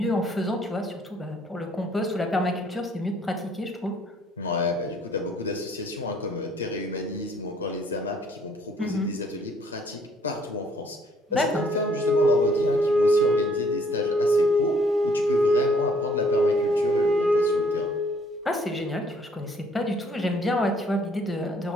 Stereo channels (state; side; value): normal; both; correlation 0.62